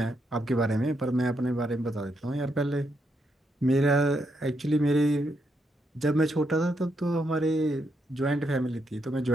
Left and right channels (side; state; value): both; normal; correlation 0.79